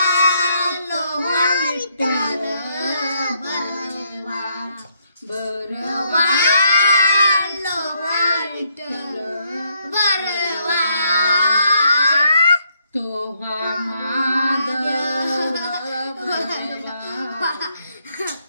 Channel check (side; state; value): both; inverted; correlation -0.74